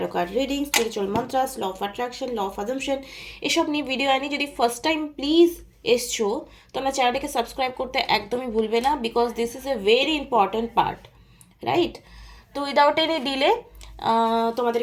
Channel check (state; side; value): identical; both; correlation 1.00